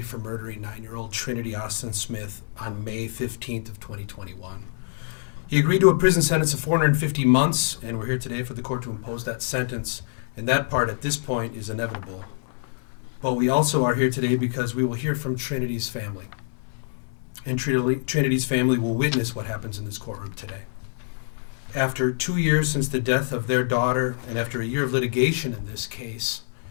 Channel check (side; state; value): right; silent; 60 dB below the other